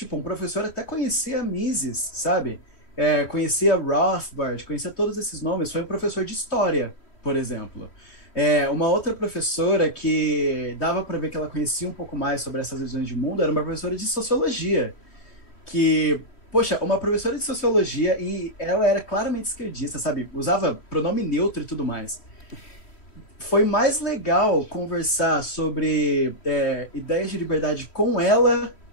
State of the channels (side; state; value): right; late; 3.1 ms